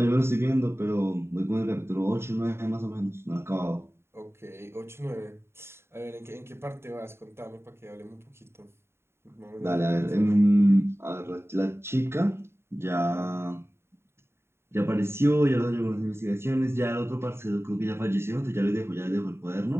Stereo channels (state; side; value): late; left; 0.12 ms